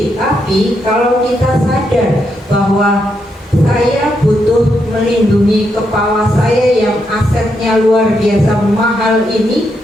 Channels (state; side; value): normal; both; correlation 0.80